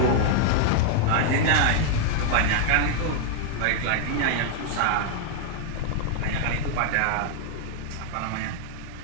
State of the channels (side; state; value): both; different; correlation 0.00